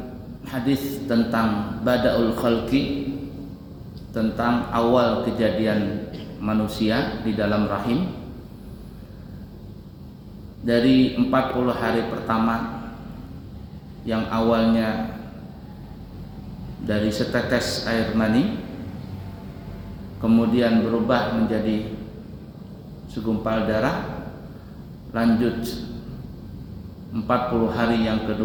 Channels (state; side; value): identical; both; correlation 1.00